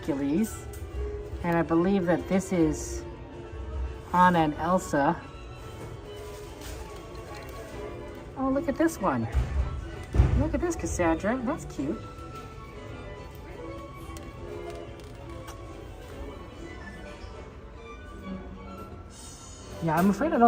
And I believe that this is Anna and Elsa. Oh, look at this one. Look at this, Cassandra. That's cute. Yeah, I'm afraid I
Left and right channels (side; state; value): both; identical; correlation 1.00